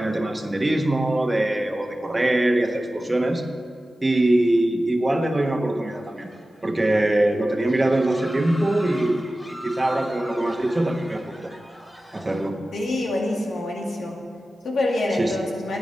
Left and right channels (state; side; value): normal; both; correlation 0.95